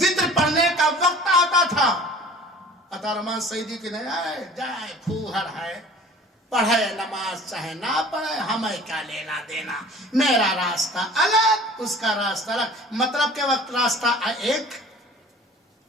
پڑھنے کا وقت آتا تھا، عطا رحمان سعیدی کی نہیں جائے پھوہر ہے، پڑھے نماز چاہے نہ پڑھے ہمیں کیا لینا دینا، میرا راستہ الگ اس کا راستہ الگ، مطلب کے وقت راستہ ایک،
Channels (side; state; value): both; normal; correlation 0.45